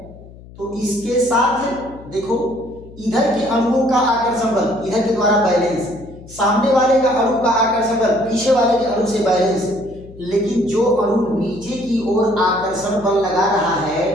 तो इसके साथ देखो, इधर के अणुओं का आकर्षण बल इधर के द्वारा बैलेंस, सामने वाले का अणु का आकर्षण बल पीछे वाले के अणु से बैलेंस। लेकिन जो अणु नीचे की ओर आकर्षण बल लगा रहा है,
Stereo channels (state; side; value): noise; left; hum, 19 dB below the sound